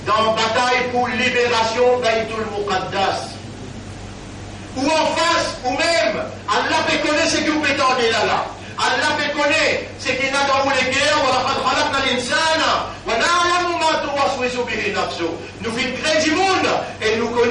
dans la bataille pour libération Baytul Muqaddas. Ou en face, ou même, Allah peut connaître ce que vous prétendez là. Allah peut connaître ce qu'il y a dans les guerres, nous faisons créer du monde et nous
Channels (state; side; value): identical; both; correlation 1.00